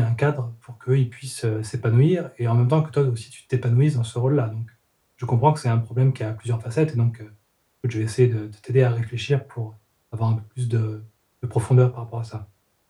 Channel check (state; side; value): identical; both; correlation 1.00